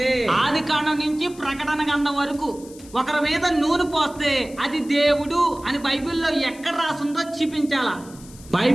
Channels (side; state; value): left; noise; hiss, 21 dB below the sound